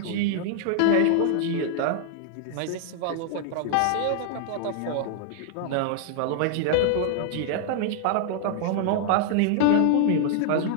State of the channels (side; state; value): both; different; correlation 0.00